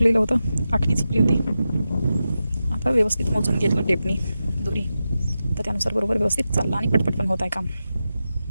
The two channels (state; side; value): inverted; both; correlation -0.91